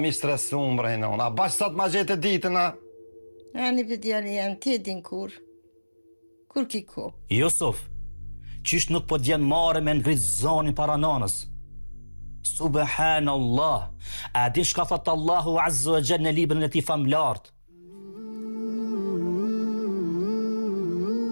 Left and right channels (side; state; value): both; inverted; correlation -1.00